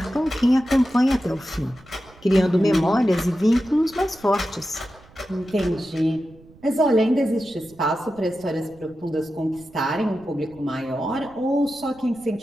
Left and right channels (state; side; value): noise; right; rumble, 25 dB below the sound